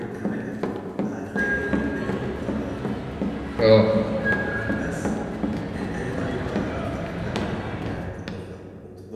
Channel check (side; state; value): both; identical; correlation 1.00